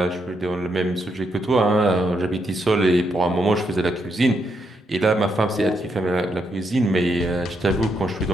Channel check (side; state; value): both; normal; correlation 0.79